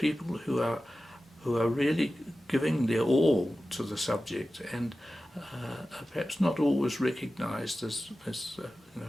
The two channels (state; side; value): normal; both; correlation 0.94